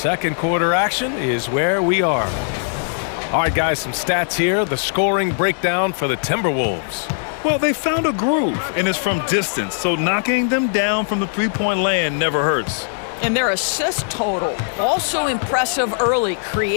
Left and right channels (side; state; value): right; silent; digital silence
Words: quarter action is where we are. All right, guys, some stats here. The scoring breakdown for the Timberwolves. Well, they found a groove, and it's from distance, so knocking them down from the three-point land never hurts. And their assist total, also impressive early,